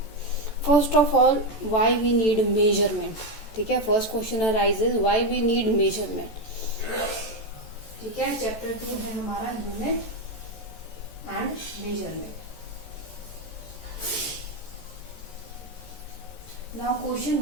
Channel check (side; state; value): right; late; 14 ms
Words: First of all why we need measurement. ठीक है, first question arises why we need measurement. ठीक है, chapter 2 है हमारा unit and measurement. Now question